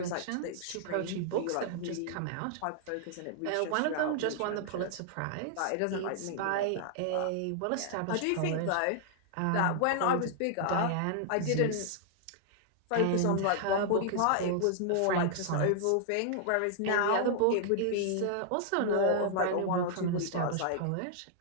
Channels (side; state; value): both; different; correlation -0.01